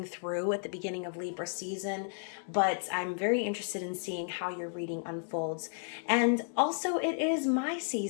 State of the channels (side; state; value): right; silent; digital silence